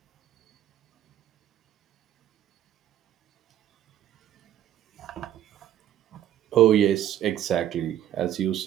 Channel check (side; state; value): left; quieter; 11.4 dB